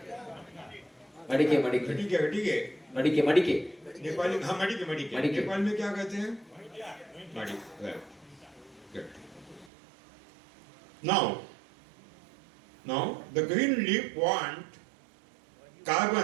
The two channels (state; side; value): drops out; left; at 9.7 s